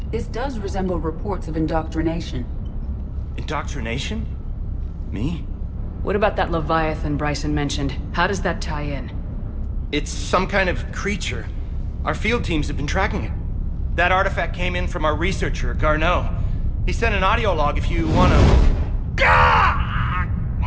this does resemble reports of indoctrination. Indoctrination? Me? What about that Leviathan Bryson mentioned? How does that tie in? It's some kind of creature. Our field teams have been tracking it. That artifact came in from our researcher, Garneau. He sent an audio log if you wanna...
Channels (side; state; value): both; identical; correlation 1.00